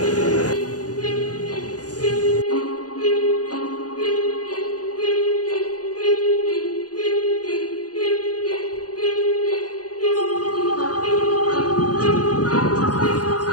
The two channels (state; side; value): late; right; 0.68 ms